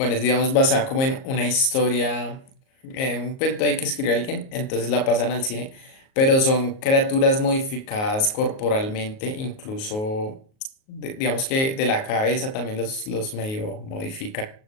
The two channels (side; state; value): right; late; 38 ms